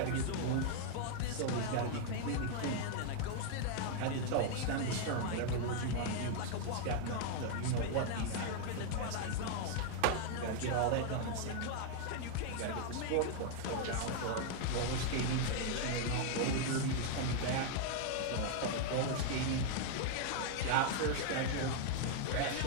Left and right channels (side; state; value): both; different; correlation 0.00